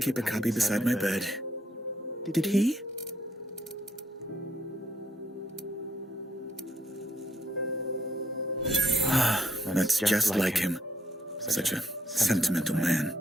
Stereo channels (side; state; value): both; normal; correlation 0.74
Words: a copy beside my bed. Did he? That's just like him. Such a sentimental man.